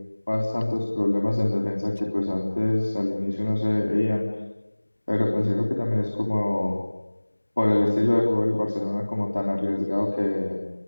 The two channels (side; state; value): both; inverted; correlation -1.00